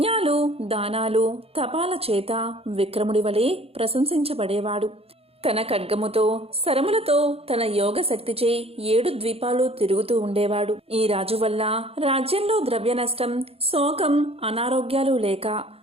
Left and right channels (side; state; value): left; late; 0.29 ms